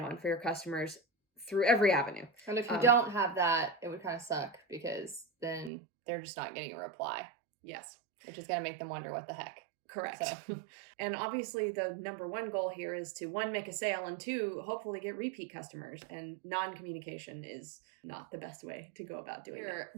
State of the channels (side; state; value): left; drops out; at 5.7 s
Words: for your customers through every avenue. And if you don't have that, it would kind of suck because then they're just not getting a reply. Yes. Which is going to make them wonder what the heck. Correct. So. And obviously the number one goal here is to, one, make a sale, and two, hopefully get repeat customers. And non-communication is not the best way to go about doing